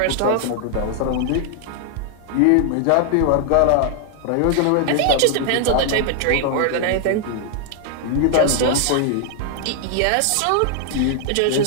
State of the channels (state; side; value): different; both; correlation 0.00